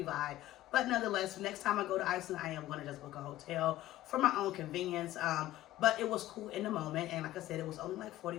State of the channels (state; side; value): quieter; right; 15.0 dB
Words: vibe. But nonetheless, next time I go to Iceland, I am going to just book a hotel for my own convenience. But it was cool in the moment. And like I said, it was only like